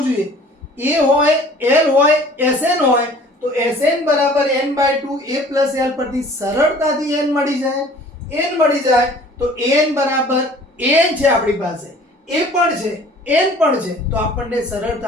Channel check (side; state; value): both; normal; correlation 0.50